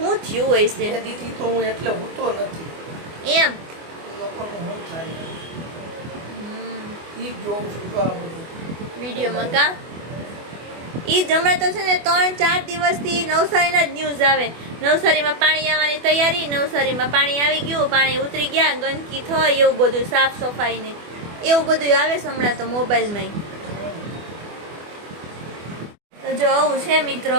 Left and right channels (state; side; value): late; left; 24 ms